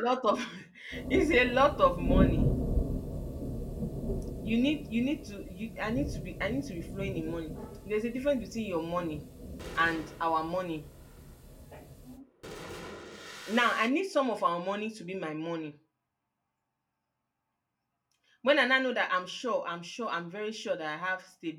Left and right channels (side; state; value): both; identical; correlation 1.00